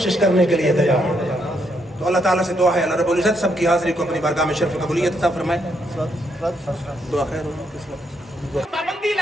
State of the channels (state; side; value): normal; both; correlation 0.76